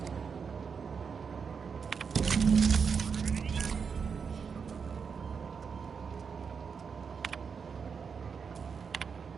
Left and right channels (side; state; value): left; quieter; 6.0 dB